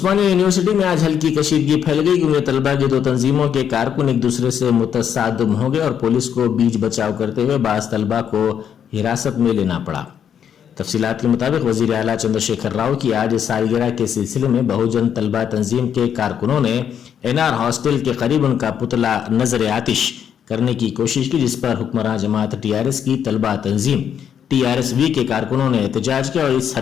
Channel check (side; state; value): right; quieter; 8.6 dB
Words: یونیورسٹی میں آج ہلکی کشیدگی پھیل گئی کیونکہ طلبہ کی 2 تنظیموں کے کارکن ایک دوسرے سے متصادم ہو گئے اور پولیس کو بیچ بچاؤ کرتے ہوئے بعض طلبہ کو حراست میں لینا پڑا۔ تفصیلات کے مطابق وزیر اعلیٰ چندر شیکھر راؤ کی آج سالگرہ کے سلسلے میں بہوجن طلبہ تنظیم کے کارکنوں نے NR ہاسٹل کے قریب ان کا پتلا نظر آتش کرنے کی کوشش کی، جس پر حکمراں جماعت TRS کی طلبہ تنظیم TRSV کے کارکنوں نے احتجاج کیا اور اس